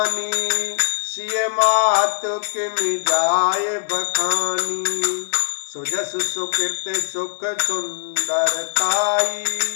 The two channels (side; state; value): right; silent; 65 dB below the other